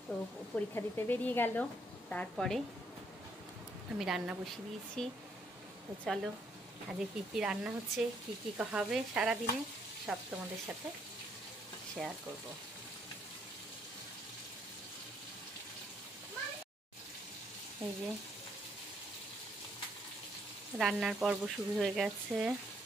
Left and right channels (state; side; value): normal; both; correlation 0.71